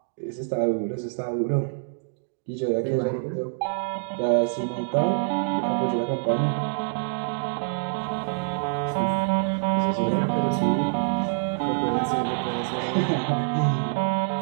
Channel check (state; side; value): silent; left; digital silence